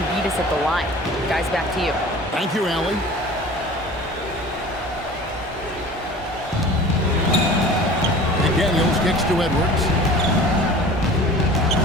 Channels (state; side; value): normal; both; correlation 0.42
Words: beat us at the line. Guys, back to you. Thank you, Allie. McDaniels kicks to Edwards.